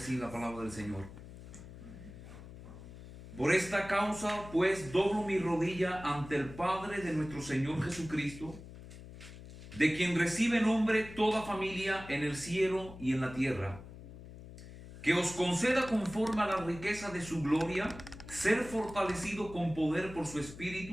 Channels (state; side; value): noise; left; hum, 15 dB below the sound